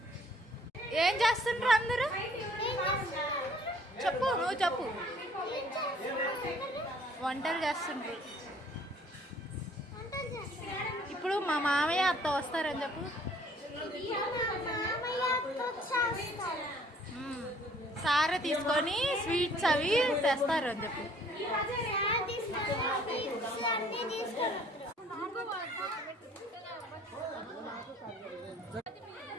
ఏం చేస్తుండ్రు అందరూ? చెప్పు, నువ్వు చెప్పు. వంటలు చేస్తుండ్రు. ఇప్పుడు మా మామయ్య అత్త వస్తారని చెప్పు. సారే తీసుకొని స్వీట్స్ అవి తెస్తారు అని చెప్పు.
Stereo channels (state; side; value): normal; both; correlation 0.58